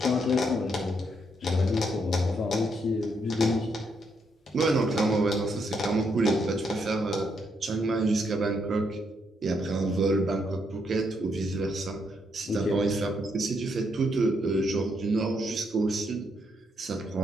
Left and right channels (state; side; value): normal; both; correlation 0.76